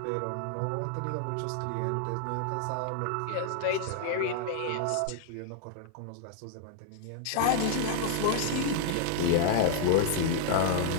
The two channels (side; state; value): both; different; correlation 0.00